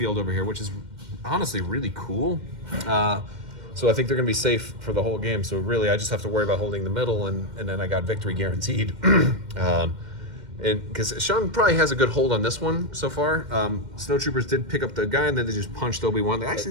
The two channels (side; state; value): left; late; 2.1 ms